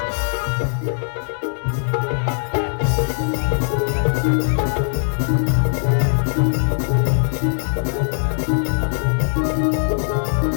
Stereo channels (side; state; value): right; silent; 66 dB below the other